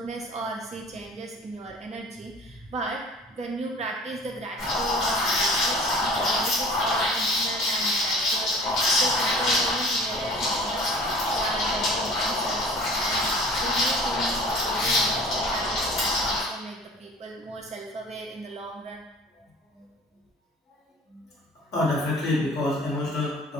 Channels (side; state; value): both; normal; correlation 0.45